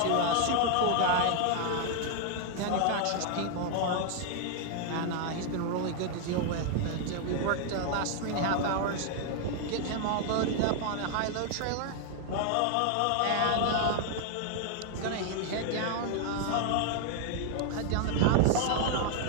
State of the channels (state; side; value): different; both; correlation 0.00